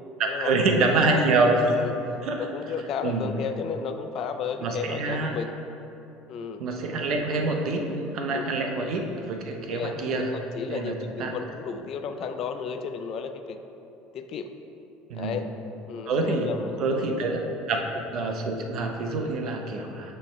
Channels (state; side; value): normal; both; correlation 0.39